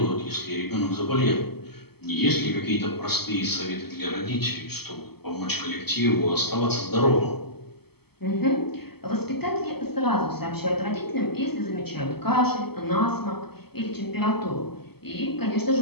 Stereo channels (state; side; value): late; right; 0.96 ms